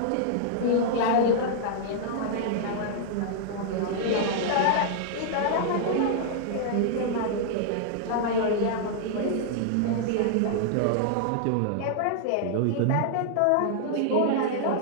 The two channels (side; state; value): both; different; correlation -0.01